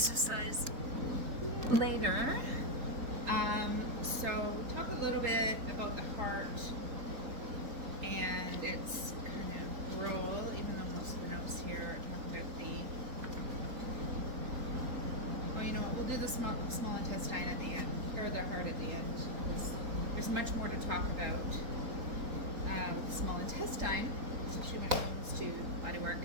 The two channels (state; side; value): late; left; 4.0 ms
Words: later. So talk a little bit about the heart and its kind of role, even though most of the notes here are talking about we'll do the small intestine at the end, or the heart at the end. There's much more to talk about. The small intestine, especially when it comes to body work.